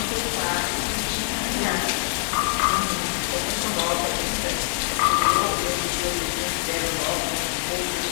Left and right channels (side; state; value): right; silent; digital silence